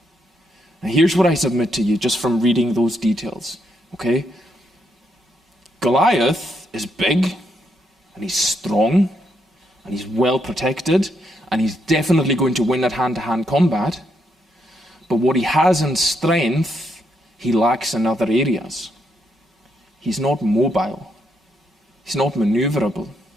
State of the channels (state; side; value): normal; both; correlation 0.77